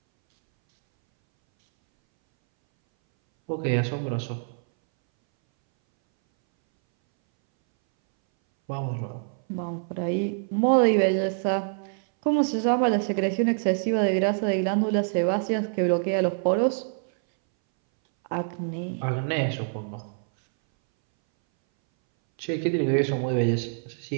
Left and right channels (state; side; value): silent; left; 61 dB below the other